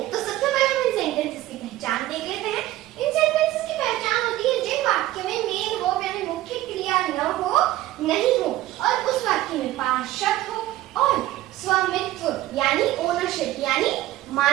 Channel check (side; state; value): left; quieter; 15.4 dB